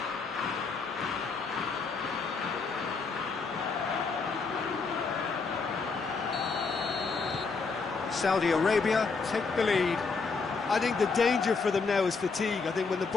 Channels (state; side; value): quieter; right; 4.6 dB